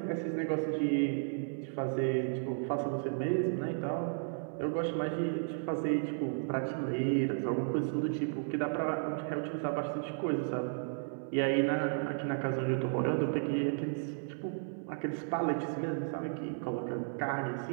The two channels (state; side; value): silent; left; 55 dB below the other